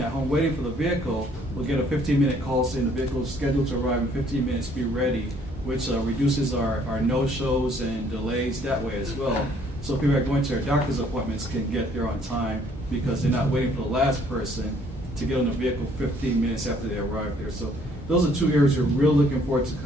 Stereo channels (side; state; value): both; normal; correlation 0.62